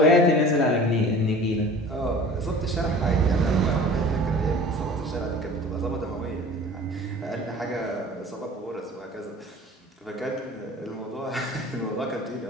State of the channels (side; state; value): both; normal; correlation 0.43